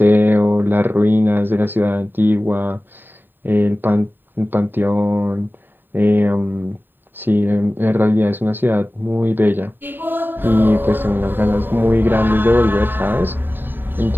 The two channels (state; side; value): late; left; 0.093 ms